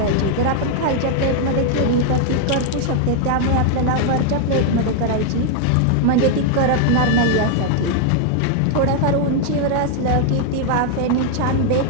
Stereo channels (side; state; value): both; different; correlation 0.00